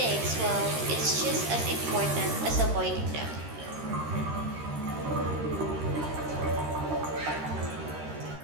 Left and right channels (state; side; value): late; left; 13 ms